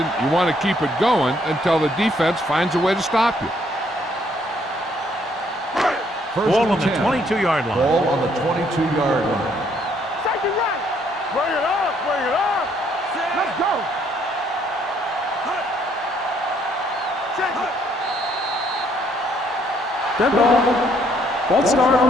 you want to keep it going until the defense finds a way to stop you. Ball on the 22-yard line. Ball on the 22-yard line. Second right. Bring it up, bring it up. Let's go. Check it. Dead ball. False start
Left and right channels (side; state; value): both; normal; correlation 0.67